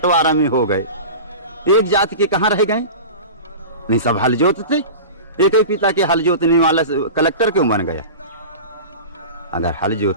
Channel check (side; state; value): both; inverted; correlation -0.32